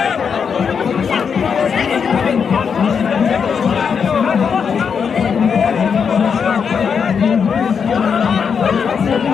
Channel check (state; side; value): quieter; right; 6.5 dB